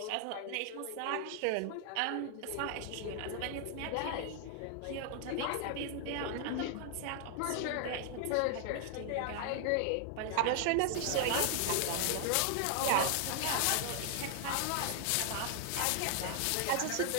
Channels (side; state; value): both; different; correlation 0.00